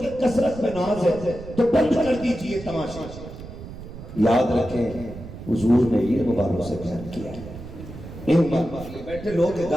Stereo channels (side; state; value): right; noise; rumble, 13 dB below the sound